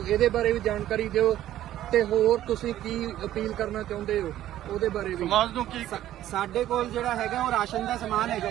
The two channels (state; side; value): quieter; left; 13.0 dB